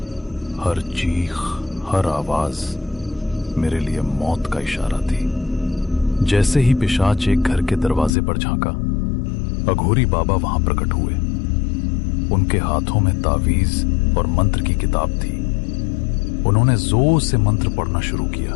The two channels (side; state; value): right; drops out; at 8.1 s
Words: हर चीख, हर आवाज मेरे लिए मौत का इशारा थी। जैसे ही पिशाच एक घर के दरवाजे पर झांका, अघोरी बाबा वहां प्रकट हुए। उनके हाथों में तावीज और मंत्र की किताब थी। उन्होंने जोर से मंत्र पढ़ना शुरू किया।